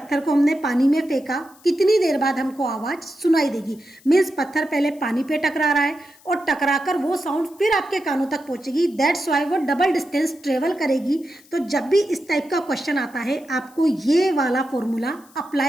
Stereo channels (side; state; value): left; noise; hiss, 27 dB below the sound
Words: को हमने पानी में फेंका, कितनी देर बाद हमको आवाज सुनाई देगी? मीन्स पत्थर पहले पानी पे टकरा रहा है और टकराकर वो साउंड फिर आपके कानों तक पहुंचेगी। दैट्स वाई वो डबल डिस्टेंस ट्रेवल करेगी। तो जब भी इस टाइप का क्वेश्चन आता है आपको ये वाला फॉर्मूला